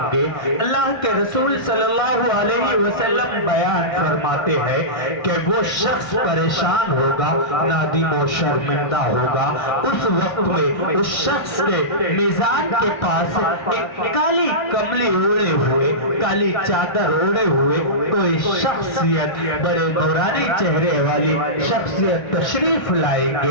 گے. اللہ کے رسول صلی اللہ علیہ وسلم بیان فرماتے ہیں کہ وہ شخص پریشان ہوگا، نادم و شرمندہ ہوگا. اس وقت میں اس شخص کے میزان کے پاس ایک کالی کملی اوڑے ہوئے، کالی چادر اوڑے ہوئے کوئی شخصیت، بڑے نورانی چہرے والی شخصیت تشریف لائیں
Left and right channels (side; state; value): right; late; 1.5 ms